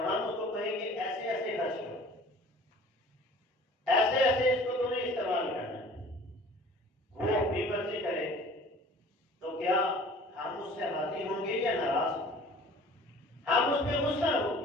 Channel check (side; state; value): both; normal; correlation 0.47